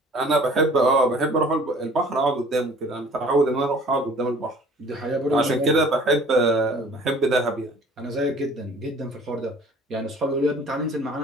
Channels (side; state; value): both; normal; correlation 0.51